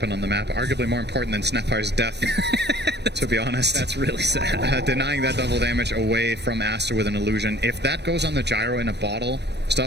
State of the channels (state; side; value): late; left; 0.50 ms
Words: on the map, arguably more important than Snapfire's death, to be honest. That's really sad. Denying that double damage away from ASTAR with an illusion. If that goes on the gyro in a bottle,